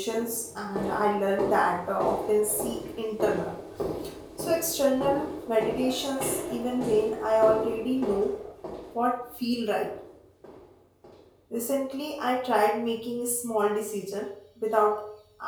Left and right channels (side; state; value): both; identical; correlation 1.00